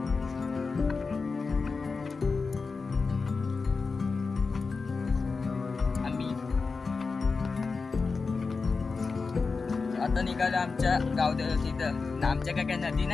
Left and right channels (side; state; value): right; quieter; 4.5 dB